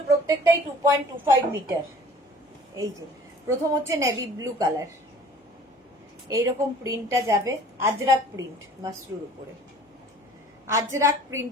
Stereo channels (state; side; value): normal; both; correlation 0.49